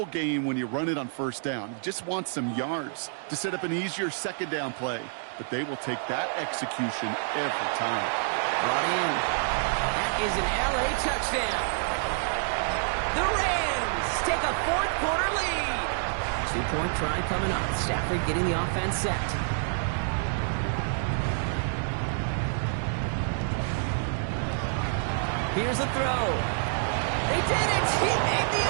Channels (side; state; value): left; silent; digital silence